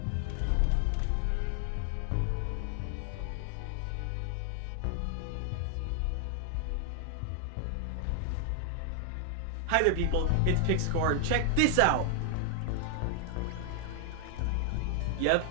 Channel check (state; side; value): different; both; correlation 0.00